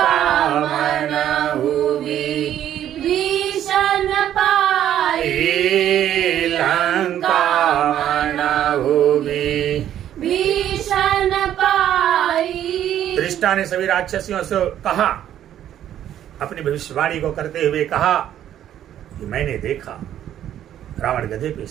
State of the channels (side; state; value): left; quieter; 11.1 dB